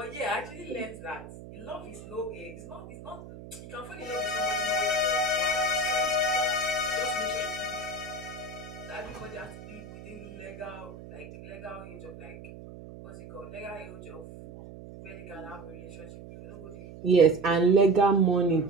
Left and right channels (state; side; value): noise; right; hum, 15 dB below the sound